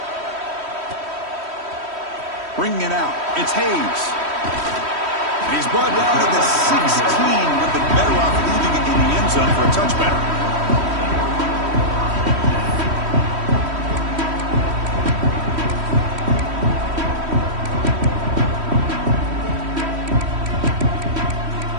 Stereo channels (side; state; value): left; late; 3.1 ms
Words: Bringing it out, it's Hayes. And he's brought down to the 16. Would have been better off leaving it in the end zone for a touchback.